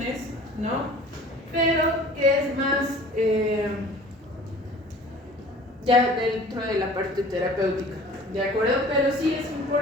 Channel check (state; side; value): normal; both; correlation 0.46